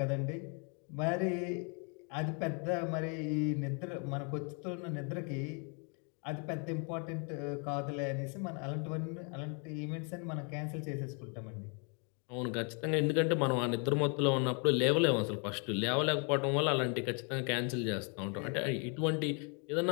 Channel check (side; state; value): right; quieter; 37.4 dB